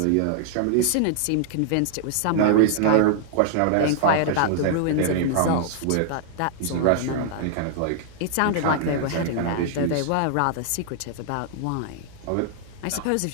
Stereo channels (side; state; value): both; different; correlation -0.01